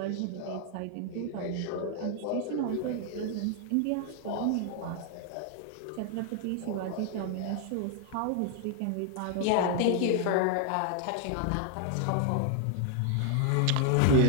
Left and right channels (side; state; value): both; different; correlation 0.00